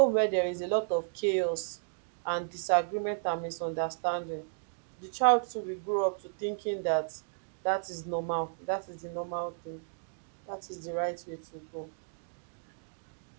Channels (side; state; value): left; silent; digital silence